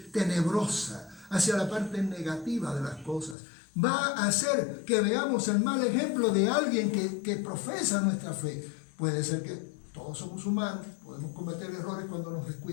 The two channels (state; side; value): drops out; right; at 3.4 s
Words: tenebrosa, hacia la parte negativa de las cosas. Va a hacer que veamos el mal ejemplo de alguien que profesa nuestra fe. Puede ser que todos somos humanos, podemos cometer errores cuando nos